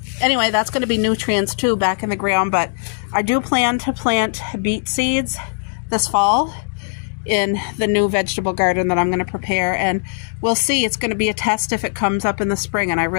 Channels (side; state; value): right; silent; digital silence